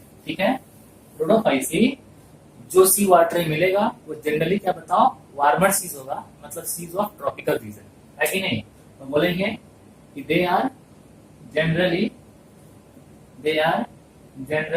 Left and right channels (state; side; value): identical; both; correlation 1.00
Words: ठीक है, रोडोफाइसी जो सी वाटर में मिलेगा वो जनरली क्या बताओ, वार्मर सीज होगा, मतलब सीज ऑफ ट्रॉपिकल रीजन, है कि नहीं। तो बोलेंगे कि they are generally